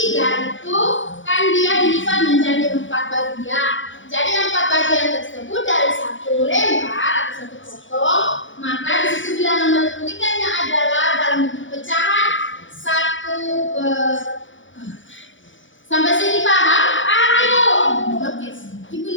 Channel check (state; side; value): late; right; 0.56 ms